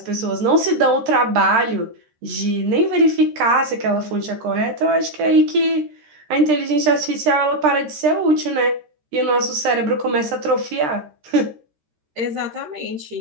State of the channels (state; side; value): late; left; 13 ms